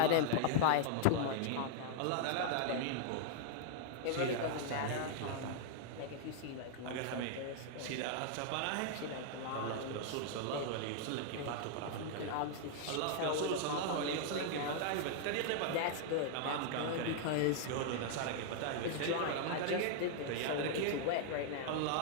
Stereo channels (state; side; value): different; both; correlation -0.01